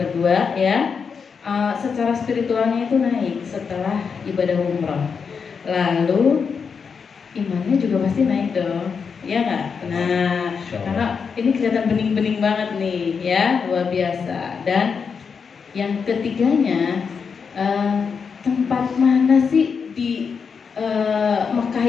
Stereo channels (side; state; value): right; quieter; 5.9 dB